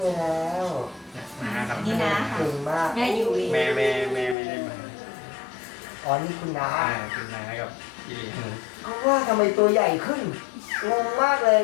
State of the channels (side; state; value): right; drops out; at 4.4 s